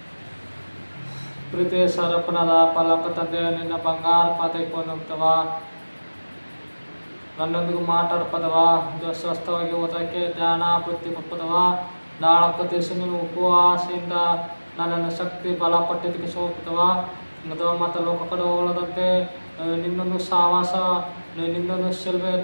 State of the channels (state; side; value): inverted; both; correlation -1.00